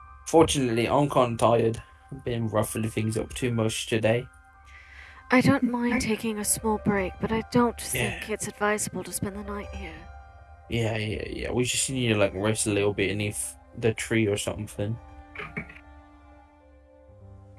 fortunately I'm kind of tired. I've been ruffling things up too much today. I don't mind taking a small break, but I don't think it's advisable to spend the night here. Yeah. We just need to rest a little bit beneath the tree or something.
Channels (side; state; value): both; identical; correlation 1.00